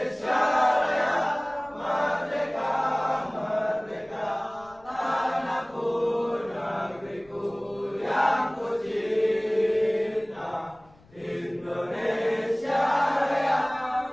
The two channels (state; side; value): noise; left; rumble, 28 dB below the sound